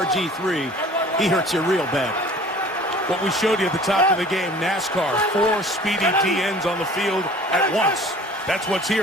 he hurts you real bad. What we showed you at the top of the game, NASCAR, 4 speedy DNs on the field at once. That's what's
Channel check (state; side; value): normal; both; correlation 0.47